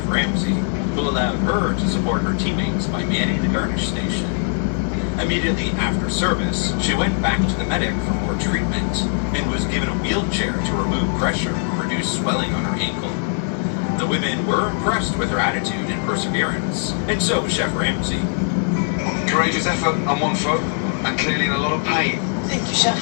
Ramsay, who allowed her to support her teammates by manning the garnish station. Immediately after service, she went back to the medic for more treatment and was given a wheelchair to remove pressure and reduce swelling on her ankle. The women were impressed with her attitude and perseverance, and so was Chef Ramsay. Courageous effort on one foot, and clearly in a lot of pain. Thank you, Chef.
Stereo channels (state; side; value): silent; right; 62 dB below the other